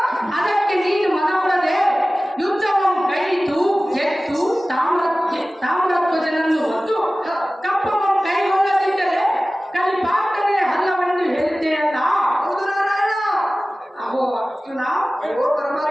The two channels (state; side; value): normal; both; correlation 0.97